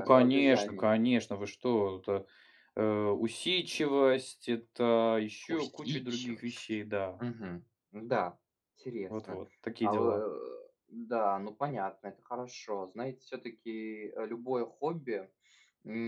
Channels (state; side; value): identical; both; correlation 1.00